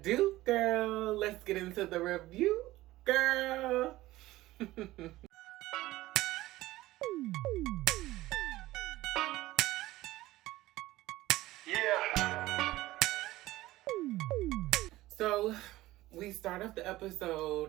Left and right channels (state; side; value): quieter; left; 17.2 dB